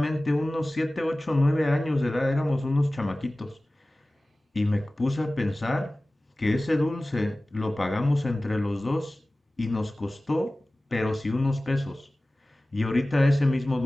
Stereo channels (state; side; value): normal; both; correlation 0.97